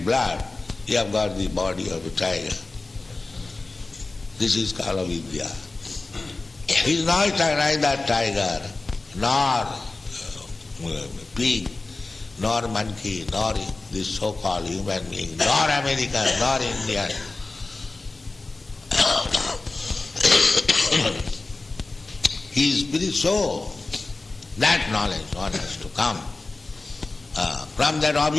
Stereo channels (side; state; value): right; quieter; 3.3 dB